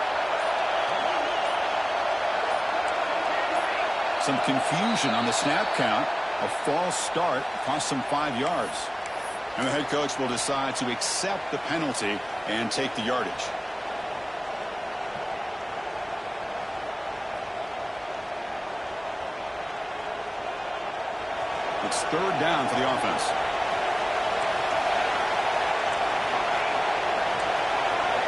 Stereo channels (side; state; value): both; identical; correlation 1.00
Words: Some confusion on the snap count. A false start cost them 5 yards. And the head coach will decide to accept the penalty and take the yardage. It's third down for the offense.